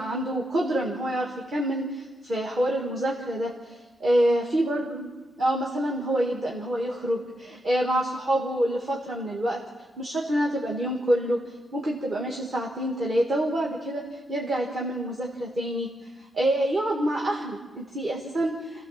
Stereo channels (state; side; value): normal; both; correlation 0.82